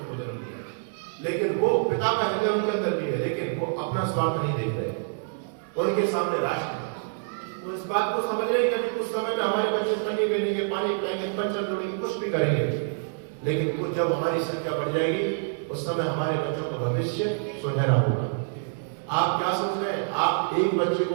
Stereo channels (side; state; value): left; silent; digital silence